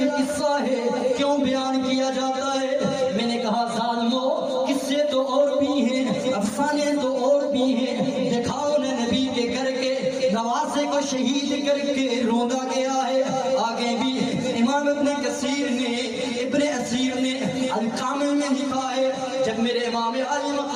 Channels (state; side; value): identical; both; correlation 1.00